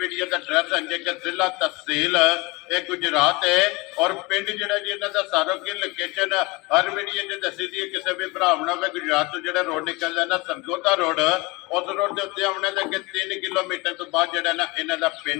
वीडियो का एड्रैस है कि जिला तहसील ये गुजरात है और पिंड जो जी इन्हों का सारो की लोकेशन हर वीडियो जो दसी दी किसी भी भरा हो गुजरात तो जो रोड निकलता ना सरगोदा रोड उस रोड के उत्ते आने के 3 किलोमीटर तो बाद जो ना इन्हों का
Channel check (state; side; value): quieter; right; 24.5 dB